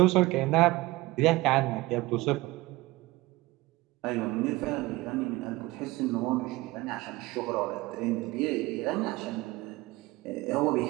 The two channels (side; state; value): left; quieter; 20.2 dB